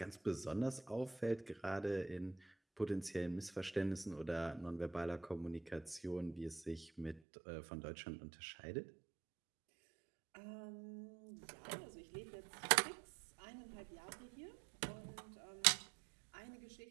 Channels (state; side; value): drops out; left; at 7.2 s